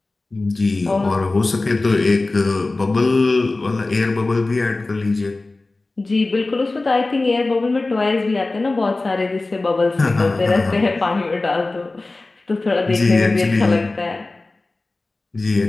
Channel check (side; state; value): right; quieter; 3.2 dB